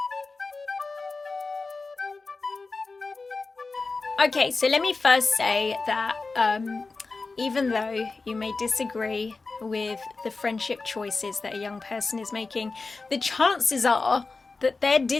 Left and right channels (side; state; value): right; quieter; 3.9 dB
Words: Okay, so let me first say that even though you may disagree with the friendship choices that a young person is making, the chances are that their